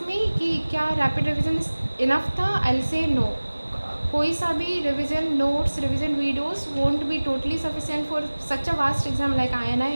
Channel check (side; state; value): both; inverted; correlation -1.00